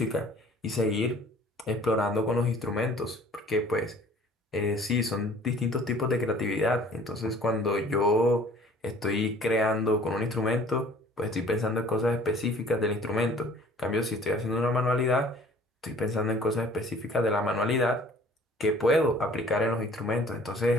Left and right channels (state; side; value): normal; both; correlation 0.52